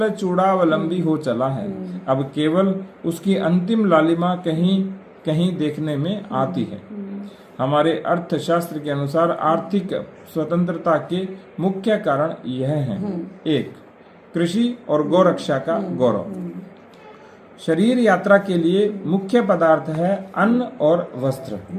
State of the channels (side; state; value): both; identical; correlation 1.00